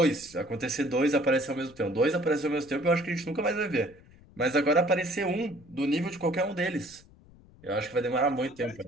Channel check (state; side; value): noise; left; rumble, 25 dB below the sound